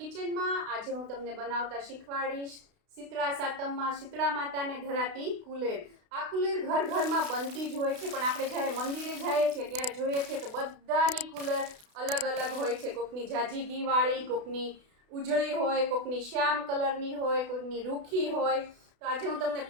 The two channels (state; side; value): late; left; 32 ms